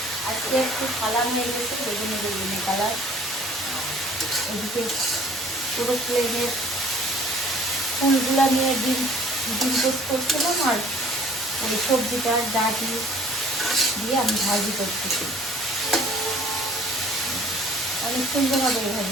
আজকে একটু কালার হয়ে গেছে, বেগুনি বেগুনি কালার। এদিকে পুরো প্লেনের ফুলগুলা নিয়ে ডিম ডিম টোস্ট করছিলাম, আর ওই সবজিটা ডাটি দিয়ে আমি ভাজি করতেছি। অনেক সুন্দর হবে এই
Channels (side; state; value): both; normal; correlation 0.53